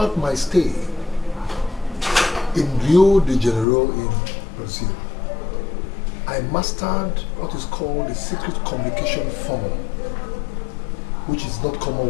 my stay in Rio de Janeiro in Brazil, I mastered what is called the secret communication formula, which is not common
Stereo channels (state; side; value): drops out; right; at 3.7 s